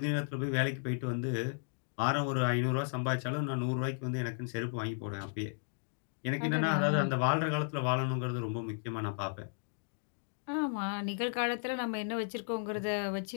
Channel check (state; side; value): silent; right; digital silence